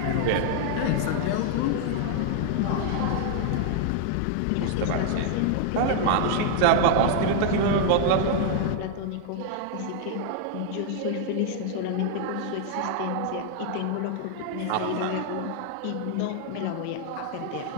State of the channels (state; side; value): different; both; correlation 0.00